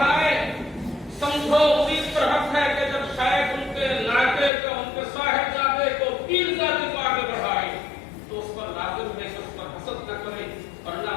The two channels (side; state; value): right; drops out; at 4.5 s